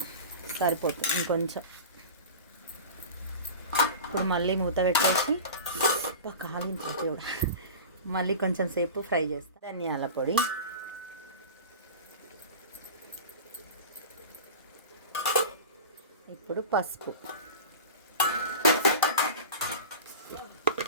సరిపోతుంది ఇంకొంచెం. ఇప్పుడు మళ్ళీ మూత పెట్టేసి మళ్ళీ కొంచెం సేపు ఫ్రై చేస్తా. ధనియాల పొడి, ఇప్పుడు పసుపు,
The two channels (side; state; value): both; inverted; correlation -0.33